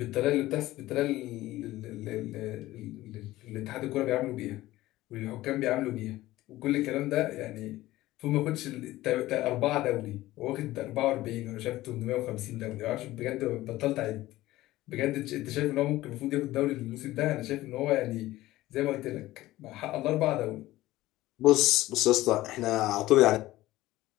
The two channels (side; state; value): right; quieter; 16.7 dB